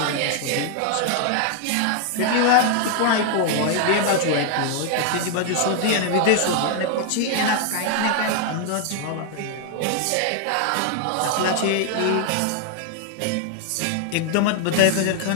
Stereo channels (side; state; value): both; different; correlation 0.00